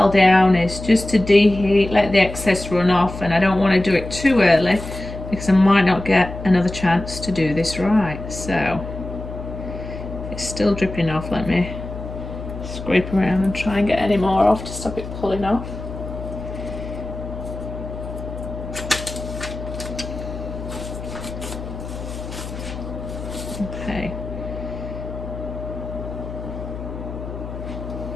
down is just to deheat, let the excess run off, and I don't want to do it too early because I might not get another chance to do this right. So it's still dripping off. Let me scrape around and try and get any more off to stop it pulling off. Okay.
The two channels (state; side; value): noise; left; hum, 9 dB below the sound